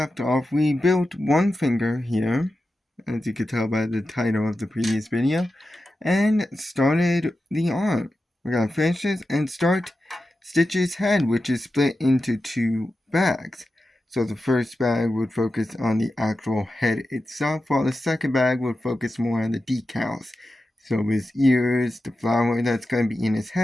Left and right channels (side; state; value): both; normal; correlation 0.91